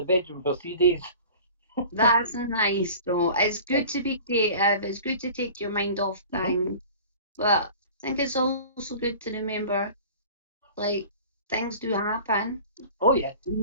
bedroom for 3 days. That's nice though. It's good to be creative. It's good to take your mind off things. But I think it's also good to remember, like, things do happen. Oh yeah.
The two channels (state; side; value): inverted; both; correlation -0.42